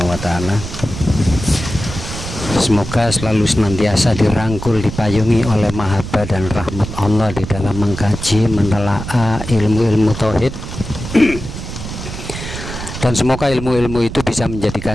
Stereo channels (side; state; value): right; noise; rumble, 9 dB below the sound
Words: wa taala, semoga selalu senantiasa dirangkul, dipayungi oleh mahabbah dan rahmat Allah di dalam mengkaji, menelaah ilmu-ilmu tauhid. Dan semoga ilmu-ilmu itu bisa